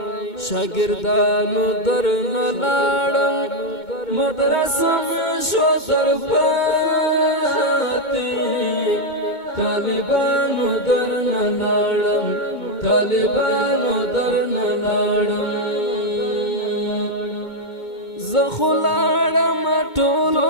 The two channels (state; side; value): late; right; 2.2 ms